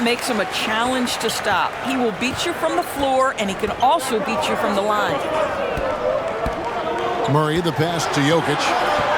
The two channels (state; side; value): identical; both; correlation 1.00